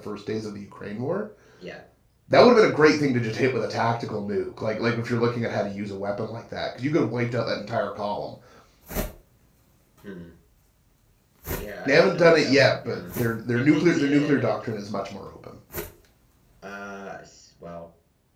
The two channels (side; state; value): both; identical; correlation 1.00